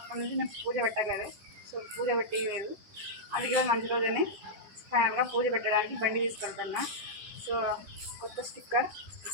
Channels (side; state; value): left; late; 10 ms